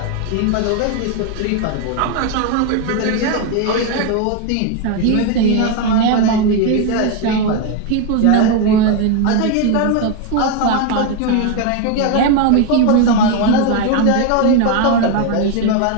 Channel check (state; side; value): different; both; correlation 0.01